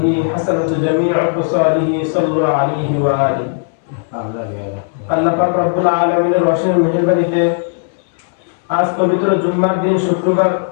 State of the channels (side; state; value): right; silent; digital silence